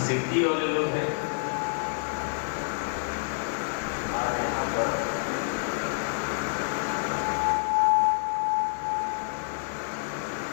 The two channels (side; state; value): right; silent; digital silence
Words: सिद्धि वाले लोग हैं,